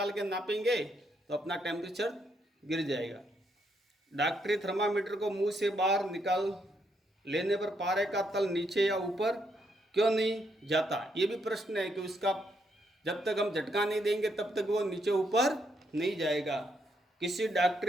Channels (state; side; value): normal; both; correlation 0.76